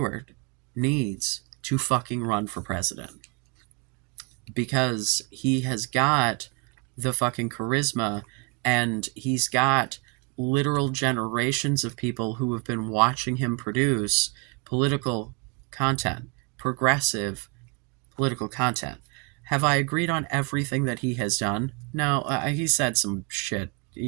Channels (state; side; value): quieter; left; 29.8 dB